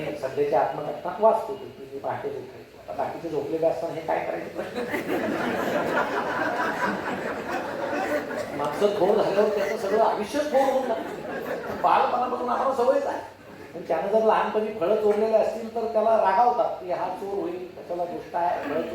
सध्याच्या आत्मकथनात वाचतो की मी पहाटेच उठायचो. आता बाकीचे झोपलेले असताना हे काय करायचं माणसं थोर झाल्यावर त्याचं सगळं आयुष्य थोर होऊन लागतं. बालपणापासून आम्हाला सवयच आहे. पण त्यानं जर लहानपणी फळं चोरलेले असतील तर त्याला रागावतात की हा चोर होईल, त्याला गोष्ट आहे, फळं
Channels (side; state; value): both; identical; correlation 1.00